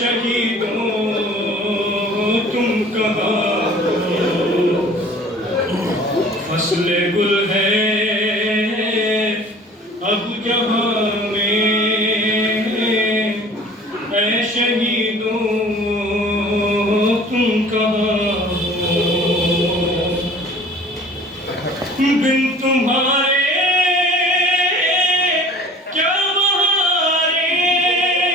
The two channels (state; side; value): normal; both; correlation 0.47